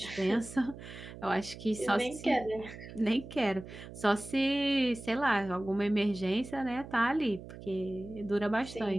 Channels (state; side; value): noise; right; hum, 14 dB below the sound